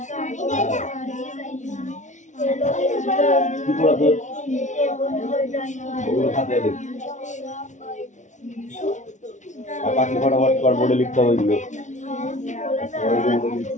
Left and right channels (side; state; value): right; late; 0.36 ms